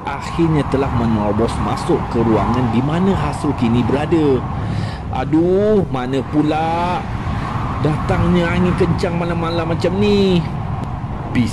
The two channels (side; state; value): both; identical; correlation 1.00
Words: akhirnya telah menerobos masuk ke ruangan di mana Hasrul kini berada. Aduh, mana pula datangnya angin kencang malam-malam macam ni?